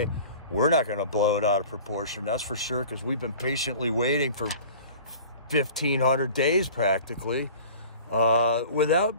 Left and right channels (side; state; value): both; inverted; correlation -0.42